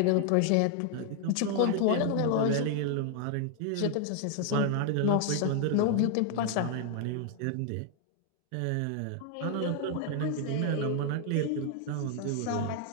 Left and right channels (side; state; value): both; different; correlation 0.00